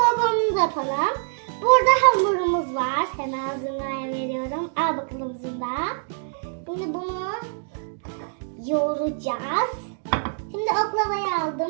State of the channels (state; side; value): silent; left; digital silence